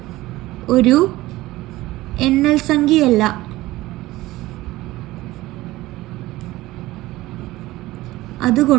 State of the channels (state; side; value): quieter; left; 17.9 dB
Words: ഒരു എണ്ണൽ സംഖ്യയല്ല.